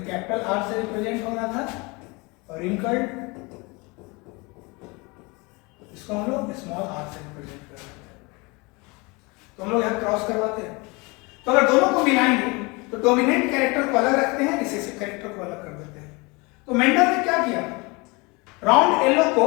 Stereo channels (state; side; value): quieter; right; 26.8 dB